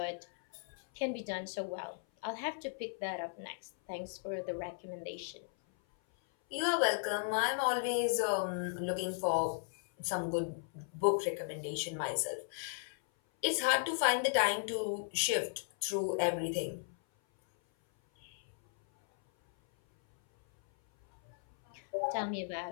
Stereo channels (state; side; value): silent; right; 54 dB below the other